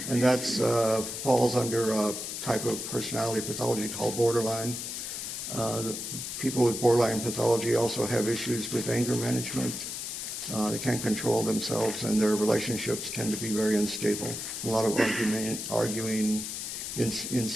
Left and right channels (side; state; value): left; noise; hiss, 6 dB below the sound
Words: that falls under a type of personality pathology called borderline. People with borderline pathology also have issues with anger management. They can't control themselves, and their relationships tend to be very unstable. A lot of arguing,